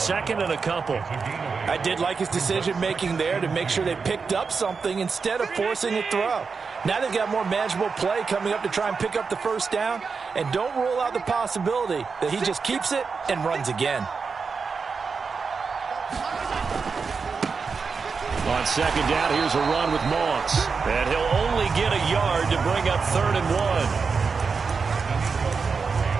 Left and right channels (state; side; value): quieter; left; 5.1 dB